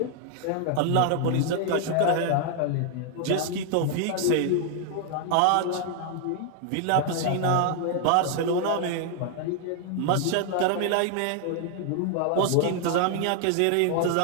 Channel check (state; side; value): different; both; correlation 0.00